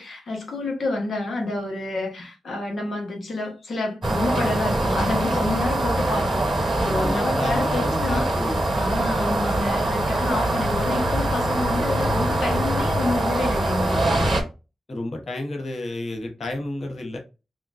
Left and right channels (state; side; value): normal; both; correlation 0.87